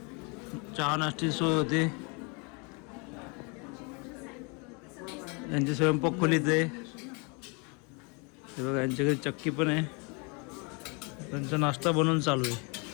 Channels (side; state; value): right; quieter; 32.5 dB